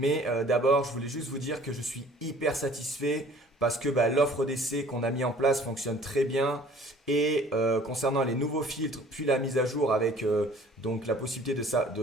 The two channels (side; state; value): both; normal; correlation 0.52